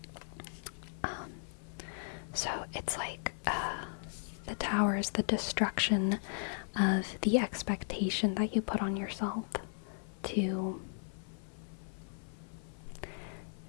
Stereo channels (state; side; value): silent; right; 53 dB below the other